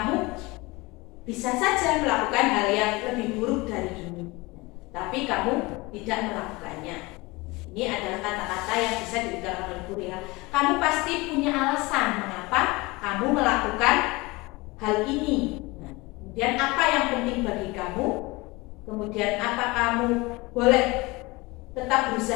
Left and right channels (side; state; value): right; quieter; 23.3 dB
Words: bisa saja melakukan hal yang lebih buruk dari ini, tapi kamu tidak melakukannya. Ini adalah kata-kata yang bisa diberikan oleh guru ya. Kamu pasti punya alasan mengapa kamu melakukan hal ini. Nah, kemudian apa yang penting bagi kamu? Kemudian apa kamu boleh tetap